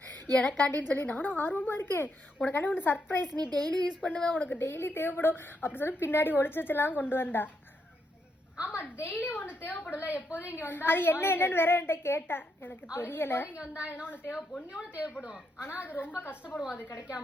எனக்காண்டின்னு சொல்லி நானும் ஆர்வமாக இருக்கேன். உனக்காண்டி ஒன்று சர்ப்ரைஸ், நீ டெய்லி யூஸ் பண்ணுவேன், உனக்கு டெய்லி தேவைப்படும் அப்படி சொல்லி பின்னாடி ஒளிச்சு வச்செல்லாம் கொண்டு வந்தா. ஆமா, டெய்லி ஒண்ணு தேவைப்படல. எப்போதும் இங்க வந்தா அது என்னன்னு வேற என்கிட்ட கேட்டா எனக்கு தெரியல. இங்க வந்தா என்ன ஒண்ணு தேவைப்படும். ஆனா அது ரொம்ப கஷ்டப்படுவோம் அது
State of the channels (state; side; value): normal; both; correlation 0.79